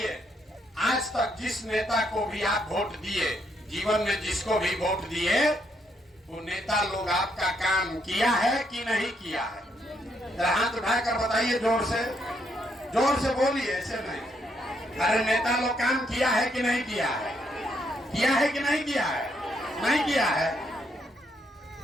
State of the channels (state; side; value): normal; both; correlation 0.75